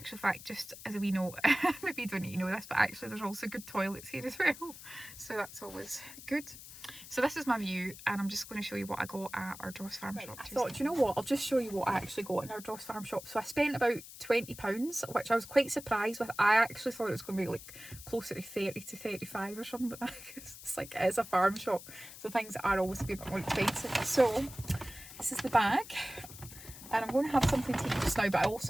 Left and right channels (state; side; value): noise; left; hiss, 15 dB below the sound